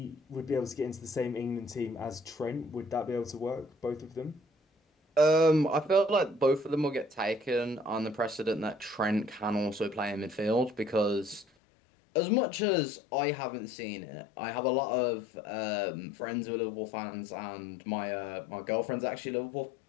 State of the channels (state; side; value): drops out; right; at 11.5 s